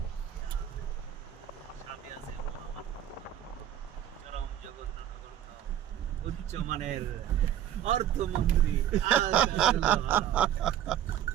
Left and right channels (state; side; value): quieter; left; 10.9 dB